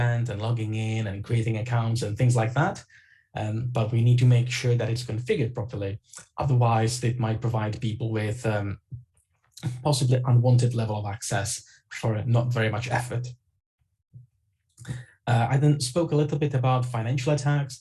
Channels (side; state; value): both; identical; correlation 1.00